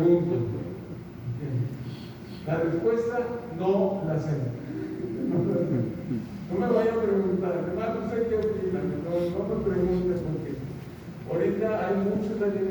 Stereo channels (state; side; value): identical; both; correlation 1.00